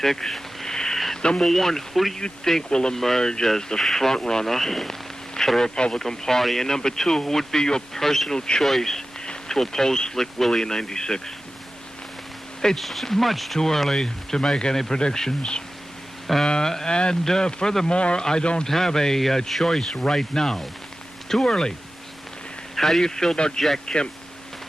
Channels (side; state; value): both; normal; correlation 0.95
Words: Number one, who do you think will emerge as the front runner for the Republican Party? And number two, who would be your personal choice to oppose Slick Willie in 96? It's much too early to make any predictions. And furthermore, I don't have a choice right now. Too early. How do you feel about Jack Kemp?